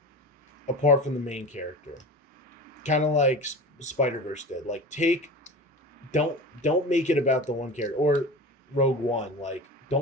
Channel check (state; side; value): normal; both; correlation 0.31